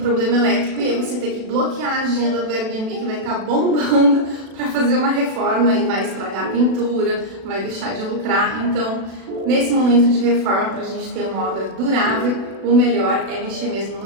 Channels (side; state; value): left; late; 36 ms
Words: elétrico e aí você ter que bloquear a agenda do Airbnb, que vai estar bombando para fazer uma reforma e vai estragar a pintura, vai deixar de lucrar. Então, nesse momento de reforma, para a gente ter uma obra durável, o melhor é mexer mesmo